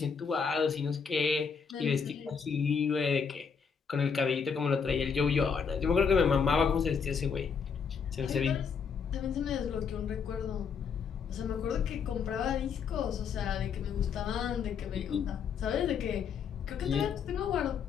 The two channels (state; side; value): quieter; right; 6.2 dB